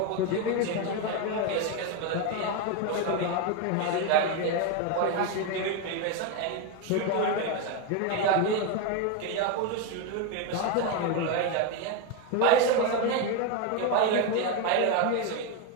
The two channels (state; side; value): different; both; correlation 0.02